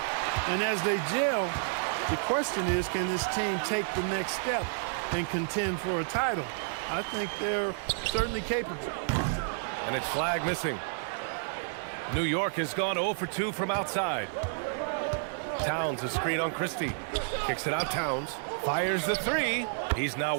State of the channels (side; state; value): left; silent; 58 dB below the other